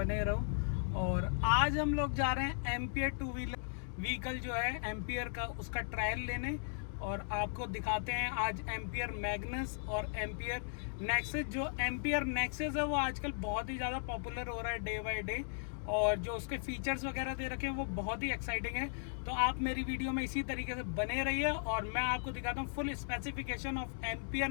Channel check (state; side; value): silent; right; digital silence